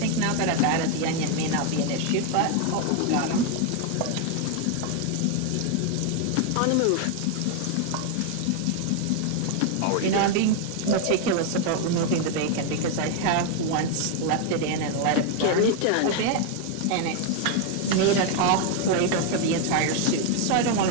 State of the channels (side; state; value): both; different; correlation 0.01